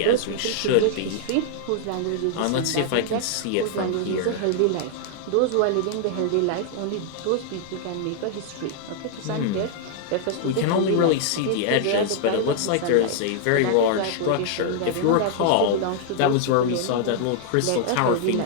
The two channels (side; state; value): both; different; correlation -0.01